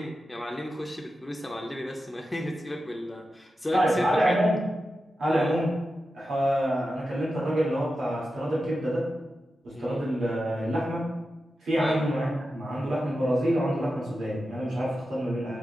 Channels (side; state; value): both; normal; correlation 0.91